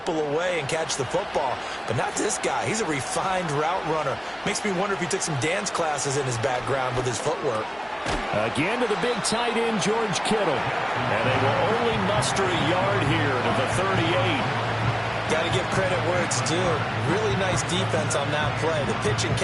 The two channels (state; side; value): identical; both; correlation 1.00